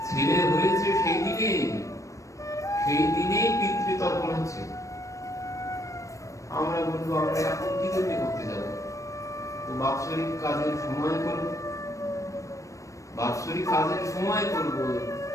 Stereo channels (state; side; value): late; right; 0.15 ms